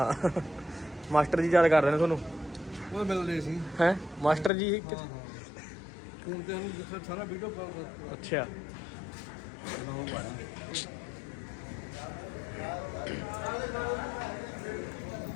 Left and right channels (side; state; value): right; drops out; at 4.5 s